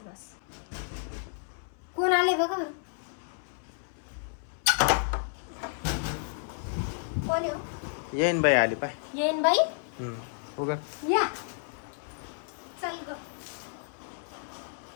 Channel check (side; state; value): right; silent; 57 dB below the other